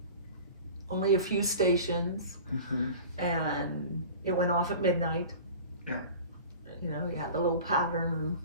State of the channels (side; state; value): both; inverted; correlation -0.39